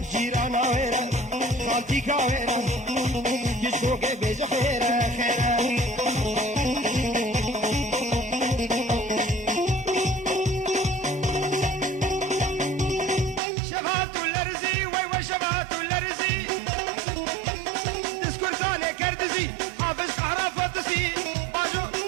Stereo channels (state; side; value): drops out; left; at 13.4 s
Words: جيرانا وير خالتي كاويرة كشكوك بيج خيرة خيرة شبهات الارزي ويوا شبهات الارزي تسكن كان كردزي حافظ حرافاتسي باجو